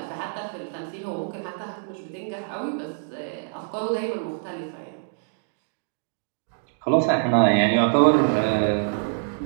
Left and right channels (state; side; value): silent; left; digital silence